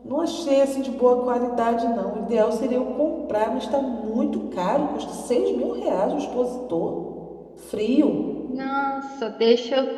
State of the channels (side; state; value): both; identical; correlation 1.00